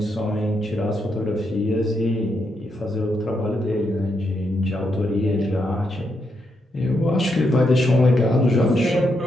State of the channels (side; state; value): both; normal; correlation 0.81